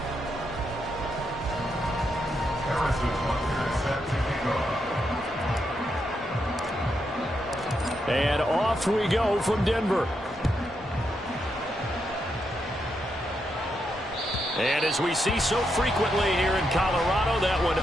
And off we go from Denver. And as we see so frequently here in Colorado, that one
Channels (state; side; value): normal; both; correlation 0.82